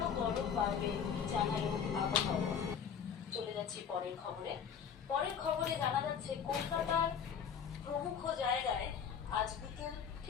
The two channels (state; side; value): quieter; right; 7.4 dB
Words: গরম বাড়বে জানালো আবহাওয়া। চলে যাচ্ছি পরের খবরে জানা যাচ্ছে কলকাতার প্রমুখ জায়গায় আজ বিকেল